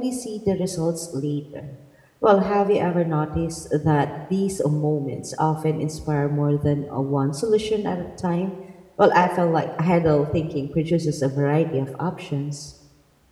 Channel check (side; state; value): both; identical; correlation 1.00